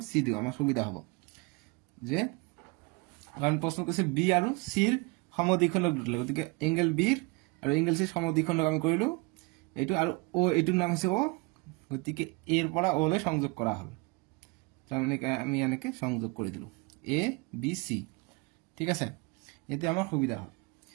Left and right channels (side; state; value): left; quieter; 27.3 dB